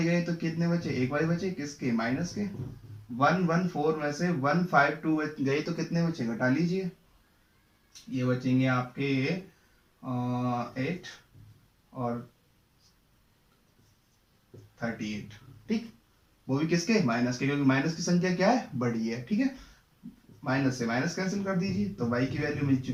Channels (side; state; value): both; identical; correlation 1.00